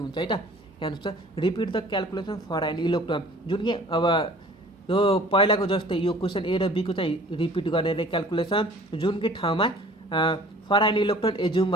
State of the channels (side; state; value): both; normal; correlation 0.49